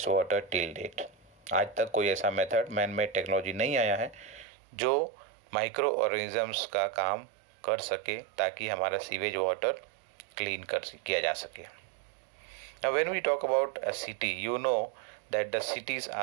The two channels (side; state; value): left; drops out; at 4.5 s